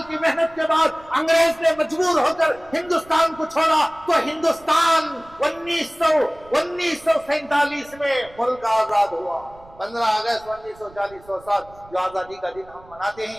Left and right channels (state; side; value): noise; right; rumble, 24 dB below the sound